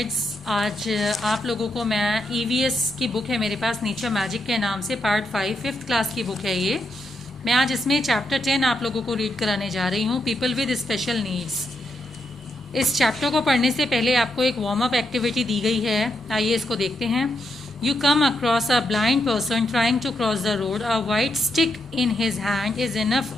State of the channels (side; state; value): both; normal; correlation 0.81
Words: आज आप लोगों को मैं ईवीएस की बुक है मेरे पास नेचर मैजिक के नाम से पार्ट 5 5th क्लास की बुक है ये। मैं आज इसमें चैप्टर 10 आप लोगों को रीड कराने जा रही हूँ, पीपल विद स्पेशल नीड्स। इस चैप्टर को पढ़ने से पहले आपको एक वार्म अप एक्टिविटी दी गई है, आइए इसको देखते हैं। You come across a blind person trying to cross the road. A white stick in his hand is